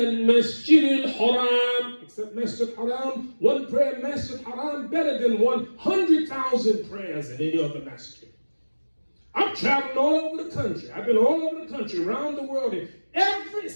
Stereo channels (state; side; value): inverted; both; correlation -1.00